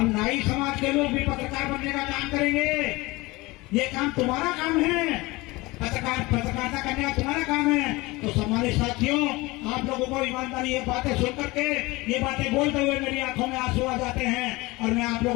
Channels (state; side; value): quieter; right; 22.1 dB